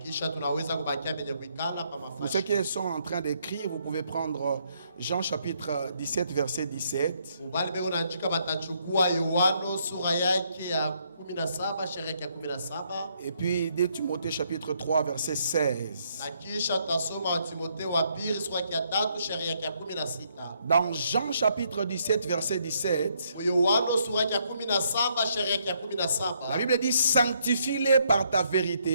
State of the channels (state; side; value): inverted; both; correlation -0.72